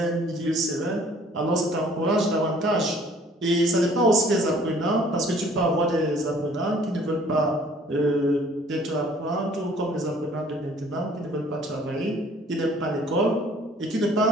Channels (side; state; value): both; normal; correlation 0.56